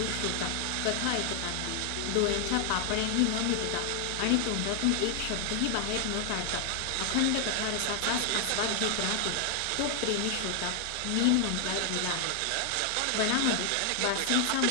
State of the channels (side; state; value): both; different; correlation 0.00